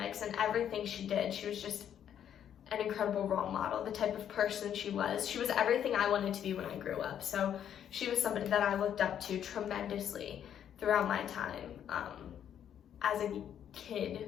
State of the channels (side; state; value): right; quieter; 9.5 dB